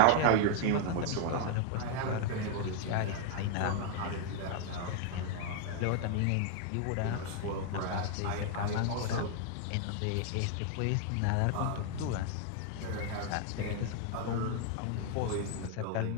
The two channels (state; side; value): different; both; correlation 0.00